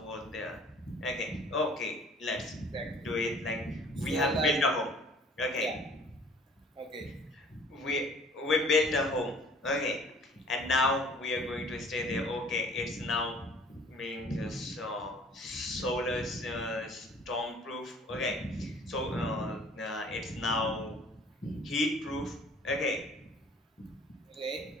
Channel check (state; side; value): normal; both; correlation 0.52